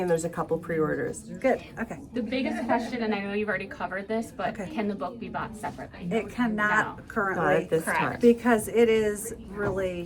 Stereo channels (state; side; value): identical; both; correlation 1.00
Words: and there's a couple pre-orders. Good, okay. The biggest question, and I know you've already covered this, but Okay. can the book be bought separately? It cannot No. currently. Not at this Correct. time. Because it is